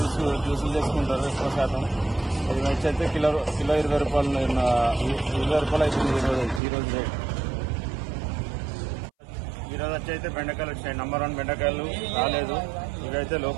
జ్యూసులు చేసుకుంటారు ఎక్కువ శాతం. ఇది వచ్చి అయితే కిలో 20 రూపాయలు, 20 రూపాయలు అవుతుంది ఈరోజు రేట్. ఈరోజు వచ్చి అయితే బెండకాయలు వచ్చినాయి. నెంబర్ 1 బెండకాయలు రాలేదు. ఇవైతే లో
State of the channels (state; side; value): drops out; left; at 6.6 s